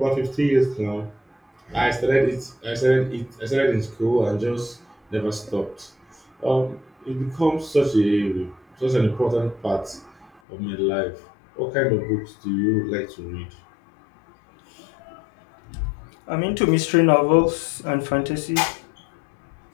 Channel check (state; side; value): drops out; right; at 10.4 s